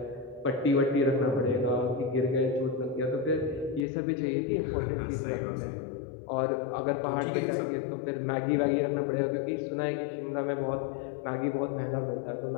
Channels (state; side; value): drops out; right; at 3.9 s